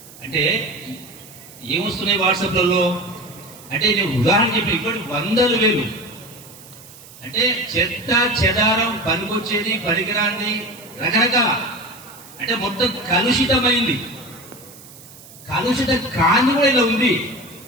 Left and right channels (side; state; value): right; noise; hiss, 20 dB below the sound